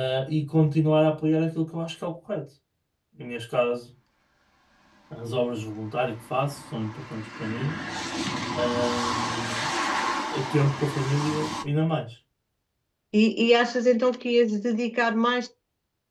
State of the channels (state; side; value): identical; both; correlation 1.00